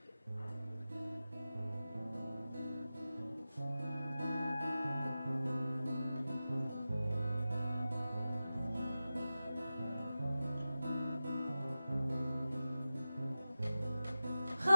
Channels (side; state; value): both; inverted; correlation -0.94